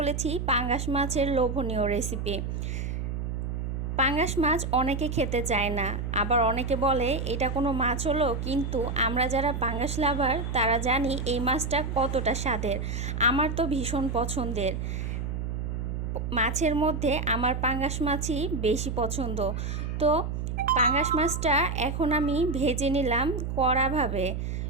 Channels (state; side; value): noise; right; hum, 3 dB below the sound